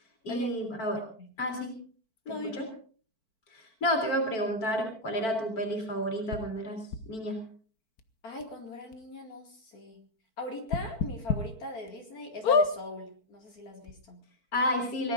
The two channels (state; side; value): late; right; 4.5 ms